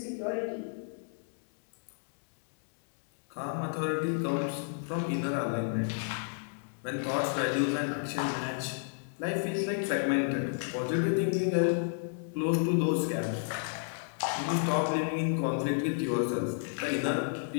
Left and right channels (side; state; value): right; silent; digital silence